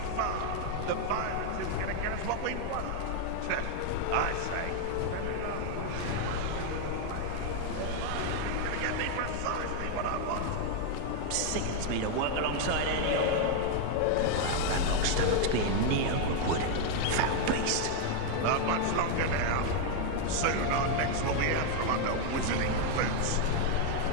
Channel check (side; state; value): both; different; correlation 0.01